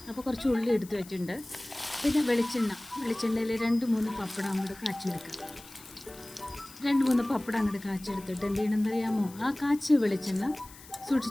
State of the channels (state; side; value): noise; left; hiss, 19 dB below the sound